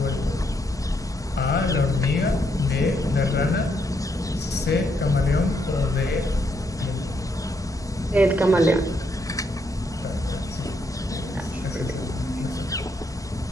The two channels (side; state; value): both; normal; correlation 0.76